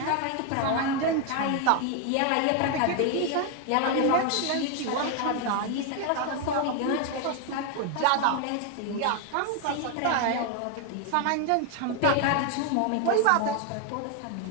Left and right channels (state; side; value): different; both; correlation 0.01